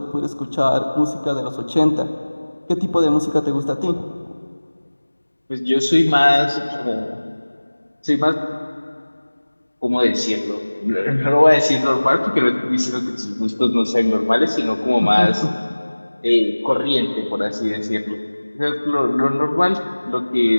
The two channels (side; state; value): both; inverted; correlation -1.00